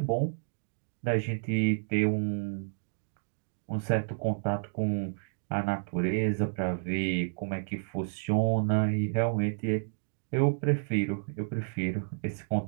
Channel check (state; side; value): silent; left; digital silence